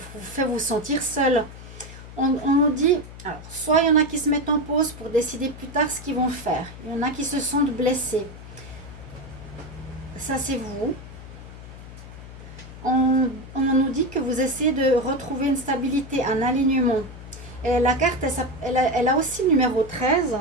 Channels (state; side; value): noise; left; hum, 15 dB below the sound